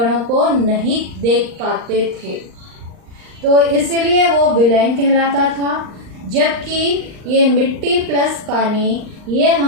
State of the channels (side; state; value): left; late; 39 ms